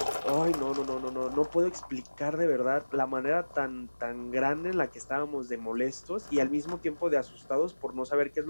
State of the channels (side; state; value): both; inverted; correlation -1.00